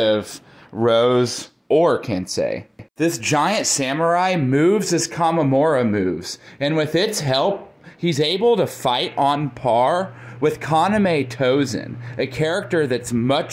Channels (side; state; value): both; identical; correlation 1.00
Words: Rose or Kensei. This giant samurai moves as Kamamura moves, and with its help, he's able to fight on par with Kaname Tozen, a character that's